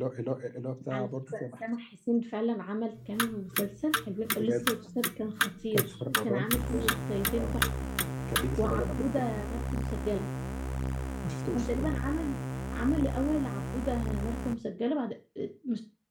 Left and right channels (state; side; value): identical; both; correlation 1.00